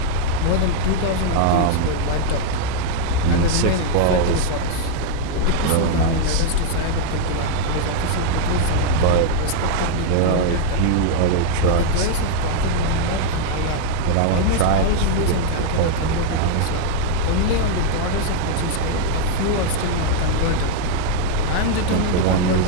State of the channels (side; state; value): both; different; correlation 0.00